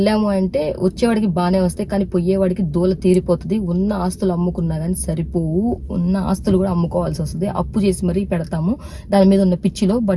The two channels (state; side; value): identical; both; correlation 1.00